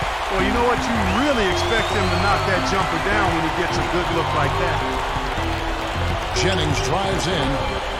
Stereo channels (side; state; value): both; identical; correlation 1.00